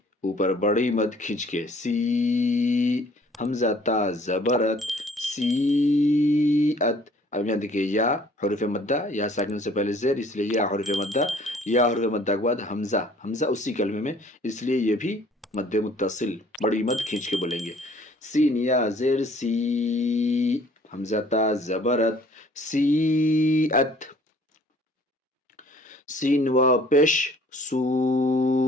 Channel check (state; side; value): normal; both; correlation 0.56